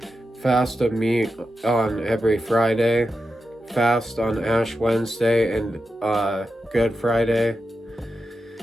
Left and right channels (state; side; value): normal; both; correlation 0.89